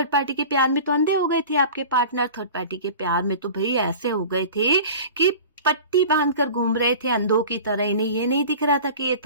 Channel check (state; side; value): inverted; both; correlation -0.38